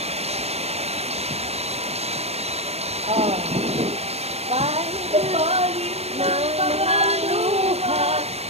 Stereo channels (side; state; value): left; late; 0.31 ms